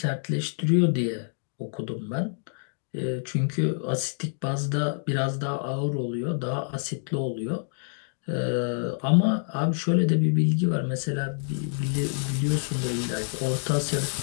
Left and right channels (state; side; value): silent; right; digital silence